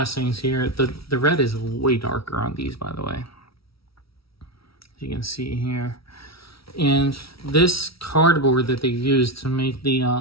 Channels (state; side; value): late; right; 0.75 ms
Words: here. The red is way darker on these, by the way. As you can see here. And this cardboard that they used to make